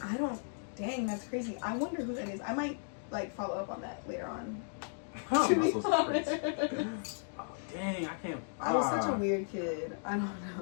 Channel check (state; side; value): silent; right; digital silence